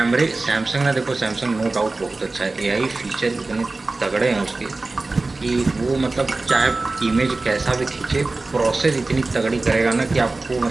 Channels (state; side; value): quieter; left; 3.4 dB